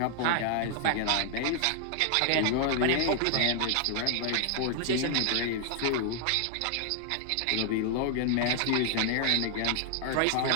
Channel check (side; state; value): both; different; correlation 0.00